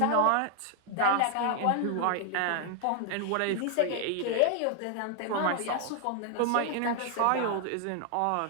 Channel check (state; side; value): different; both; correlation 0.00